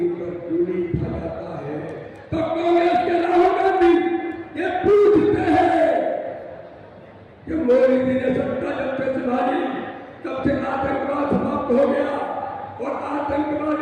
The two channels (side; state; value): both; identical; correlation 1.00